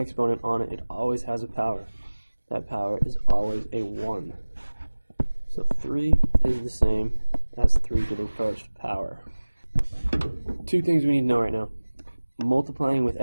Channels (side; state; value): both; inverted; correlation -1.00